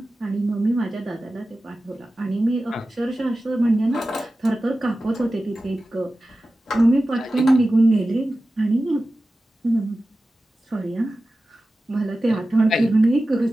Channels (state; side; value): normal; both; correlation 0.95